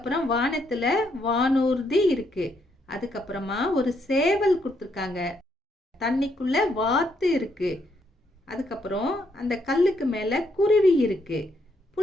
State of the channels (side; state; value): both; normal; correlation 0.75